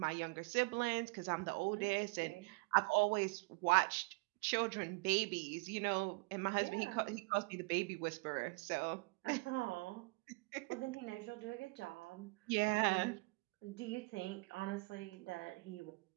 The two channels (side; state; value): left; quieter; 28.1 dB